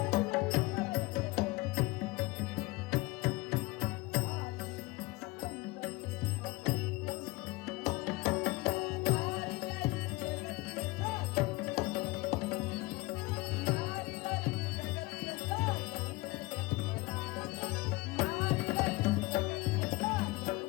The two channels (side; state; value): right; quieter; 22.1 dB